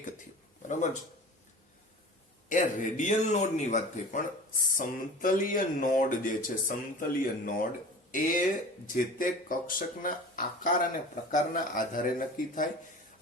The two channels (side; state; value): both; normal; correlation 0.38